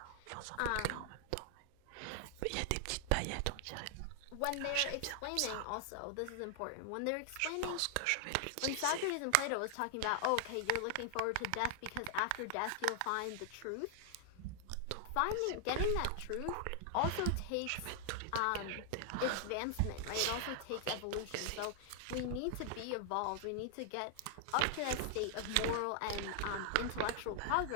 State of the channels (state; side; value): different; both; correlation 0.00